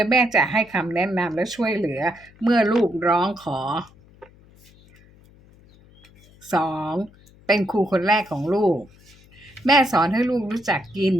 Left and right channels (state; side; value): noise; left; hum, 27 dB below the sound